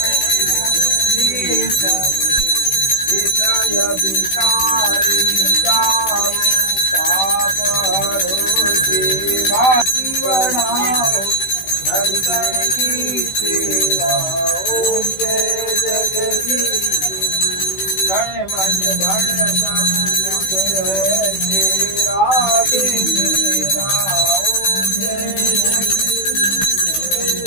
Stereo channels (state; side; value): late; right; 16 ms